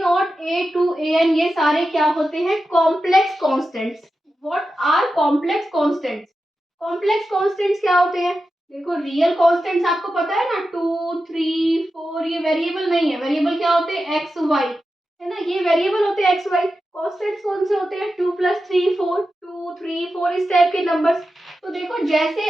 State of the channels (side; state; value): both; normal; correlation 0.91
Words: A two A N ये सारे क्या होते हैं, complex constants. What are complex constants, complex constants क्या होते हैं, देखो रियल कॉन्स्टेंट्स आपको पता है ना, 2 3 4, ये वेरिएबल नहीं है। वेरिएबल क्या होते हैं, एक्स वाई, है ना, ये वेरिएबल होते हैं एक्स वाई। कॉन्स्टेंट्स कौन से होते हैं, 2 प्लस 3 4, 2 3 4, इस टाइप के नंबर्स। तो देखो जैसे